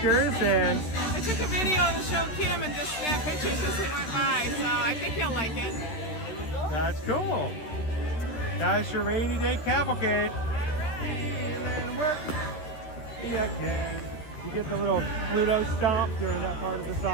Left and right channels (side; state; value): right; late; 13 ms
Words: and I took a video to show Kim and just snapped pictures as they went by, so I think he'll like it. that's cool. That's your rainy day cavalcade. Feeling work. Yeah, okay. You get the little Pluto stomp during that part of the